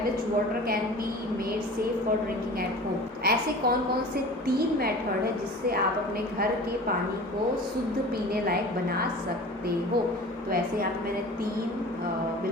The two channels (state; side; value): normal; both; correlation 0.39